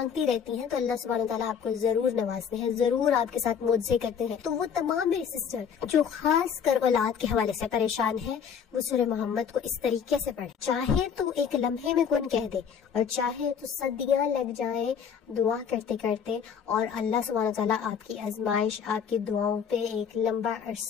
رہتی ہیں، تو اللہ سبحانہ وتعالیٰ آپ کو ضرور نوازتے ہیں، ضرور آپ کے ساتھ معجزے کرتے ہیں۔ تو وہ تمام میری سسٹر جو خاص کر اولاد کے حوالے سے پریشان ہے، وہ سورہ محمد کو اس طریقے سے پڑھے، چاہے تو ایک لمحے میں کون کہہ دے اور چاہے تو صدیاں لگ جائیں دعا کرتے کرتے، اور اللہ سبحانہ وتعالیٰ آپ کی آزمائش، آپ کی دعاؤں پہ ایک لمبا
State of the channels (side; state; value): right; quieter; 7.3 dB